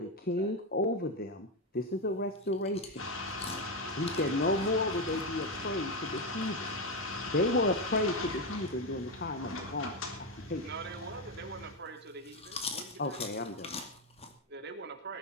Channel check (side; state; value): both; normal; correlation 0.09